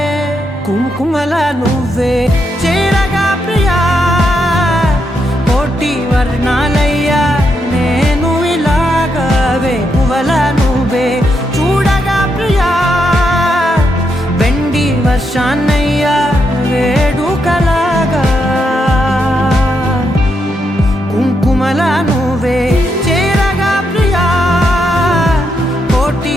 కుంకుమల నువ్వే చేరగా ప్రియా కోటి వర్ణాలయ్యా నేను ఇలాగవే పువ్వల నువ్వే చూడగా ప్రియా బెండి వర్షాన్నయ్యా వేడుకలాగా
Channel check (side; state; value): both; normal; correlation 0.81